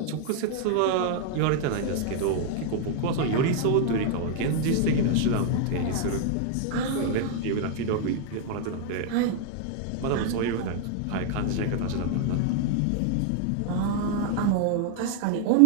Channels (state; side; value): different; both; correlation 0.00